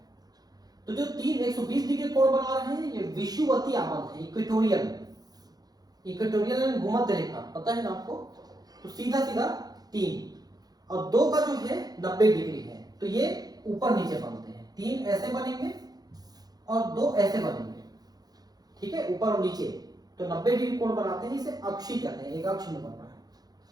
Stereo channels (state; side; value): late; left; 0.19 ms